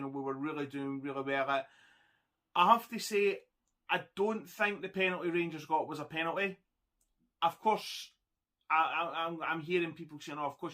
know, we were really doing really well at. I have to say, I don't think the penalty Rangers got was a penalty. Of course, I'm hearing people saying, oh, of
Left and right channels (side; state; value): both; identical; correlation 1.00